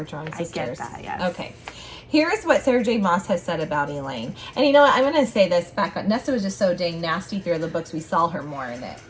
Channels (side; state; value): both; identical; correlation 1.00